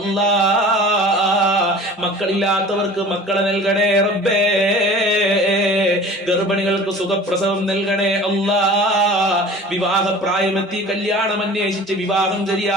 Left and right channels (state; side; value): normal; both; correlation 0.42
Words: മക്കളില്ലാത്തവർക്ക് മക്കളെ നൽകണേ റബ്ബേ. ഗർഭിണികൾക്ക് സുഖപ്രസവം നൽകണേ അല്ലാ. വിവാഹ പ്രായമെത്തി കല്യാണം അന്വേഷിച്ച് വിവാഹം